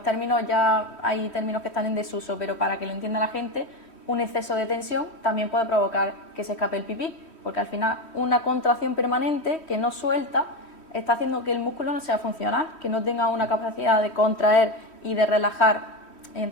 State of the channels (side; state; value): right; late; 3.1 ms